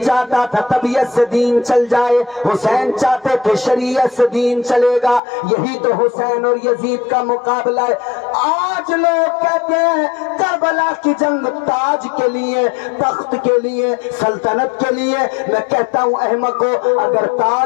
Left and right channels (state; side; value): drops out; right; at 5.2 s